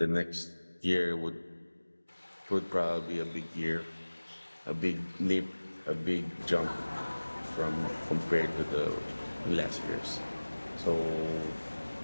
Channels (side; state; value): both; inverted; correlation -1.00